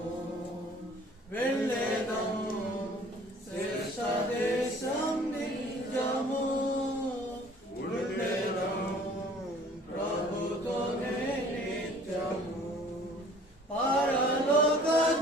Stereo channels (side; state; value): both; normal; correlation 0.52